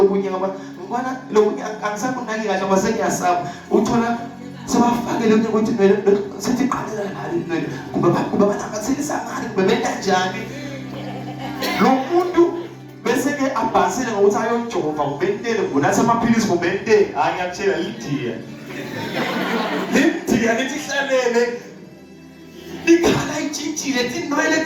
kunye ngoba ngibona lokunye angisakunaki kahle ngoba sengiyasaba uthola sebafake lo ukuthi sithi qalela ngale kumbe banamathilisa ngani kumbe benkanjani lo muntu bese ke abhasile ngokuthi ayojova kubentele ngunathi amaphilisi kubentele hayi ngiyakutshela lidiya lithi hlalele ikhala itshintshile tinwele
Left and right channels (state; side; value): identical; both; correlation 1.00